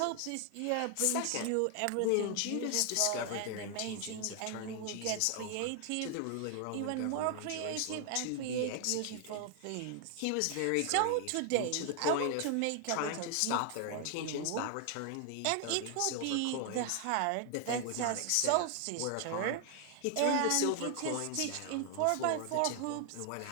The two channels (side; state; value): both; different; correlation 0.00